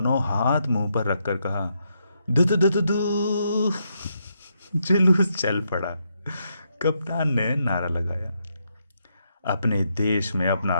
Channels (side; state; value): both; inverted; correlation -0.79